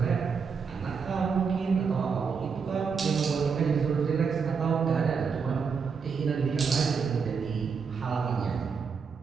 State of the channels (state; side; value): quieter; left; 5.8 dB